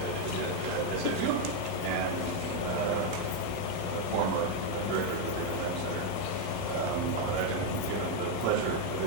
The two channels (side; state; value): both; different; correlation 0.01